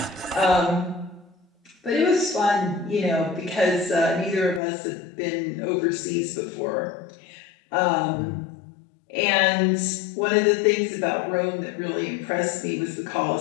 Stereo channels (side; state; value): right; drops out; at 4.6 s